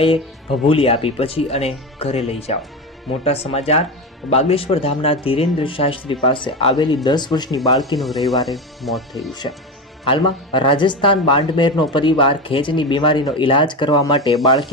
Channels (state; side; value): normal; both; correlation 0.20